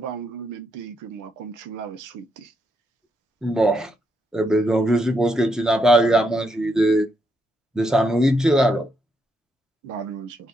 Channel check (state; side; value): normal; both; correlation 0.79